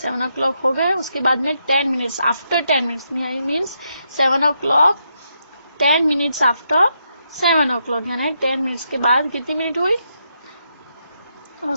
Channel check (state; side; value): inverted; both; correlation -0.80